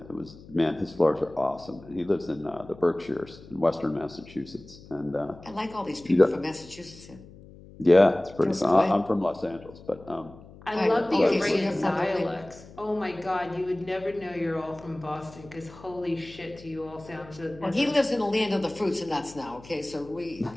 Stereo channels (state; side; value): noise; left; hum, 20 dB below the sound